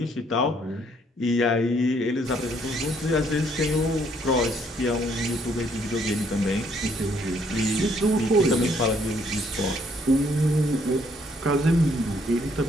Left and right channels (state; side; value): normal; both; correlation 0.67